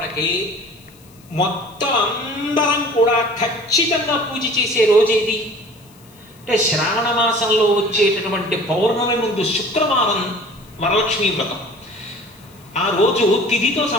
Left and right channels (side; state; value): left; noise; hiss, 27 dB below the sound